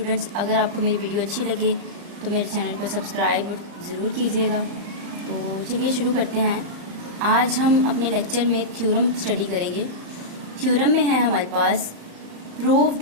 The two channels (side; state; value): left; late; 35 ms